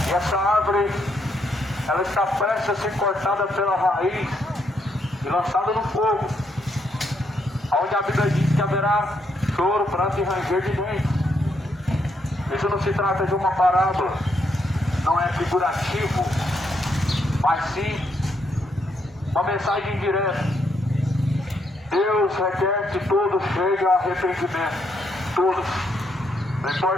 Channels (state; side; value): normal; both; correlation 0.76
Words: e essa árvore ela está prestes a ser cortada pela raiz e lançada no fogo, onde a Bíblia diz que haverá choro, pranto e ranger de dentes. Isso não se trata de uma parábola, não é figurativo, mas sim uma mensagem direta. Deus requer que todos cheguem a arrependimento, todos. Não